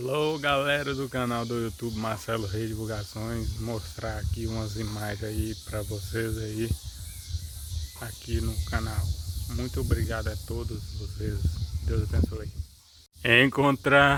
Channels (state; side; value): identical; both; correlation 1.00